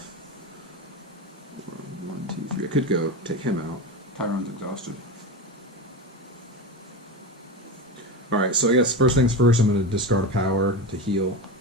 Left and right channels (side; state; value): both; normal; correlation 0.21